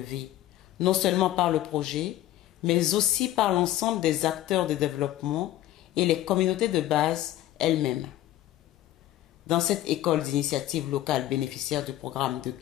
non seulement par le projet, mais aussi par l'ensemble des acteurs de développement et les communautés de base elles-mêmes. Dans cette école d'initiative locale bénéficiaire du programme de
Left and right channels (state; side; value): quieter; right; 14.2 dB